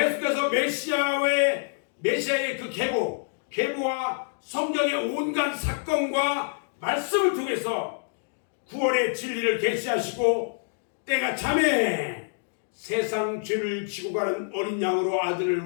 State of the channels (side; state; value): right; silent; digital silence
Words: 메시아의 그 계보와 성경의 온갖 사건과 말씀을 통해서 구원의 진리를 계시하시고, 때가 참에 세상 죄를 지고 가는 어린 양으로 아들을